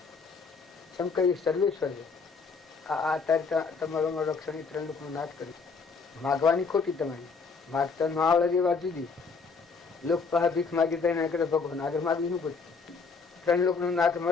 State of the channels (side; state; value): right; quieter; 4.9 dB